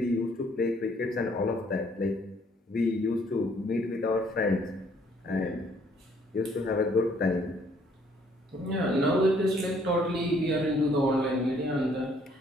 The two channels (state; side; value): normal; both; correlation 0.64